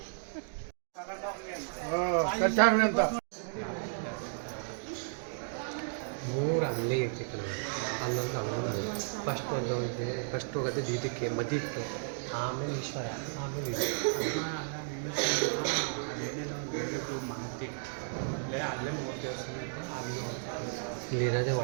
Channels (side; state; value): left; silent; digital silence